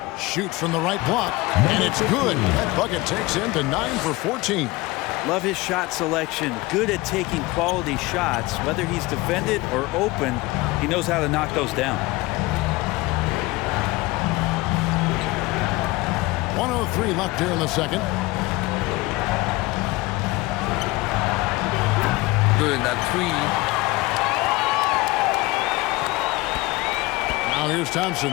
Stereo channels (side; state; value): right; quieter; 21.3 dB